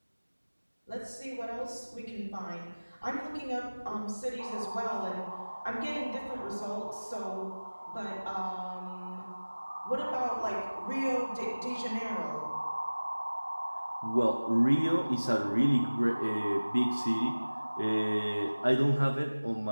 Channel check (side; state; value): both; inverted; correlation -1.00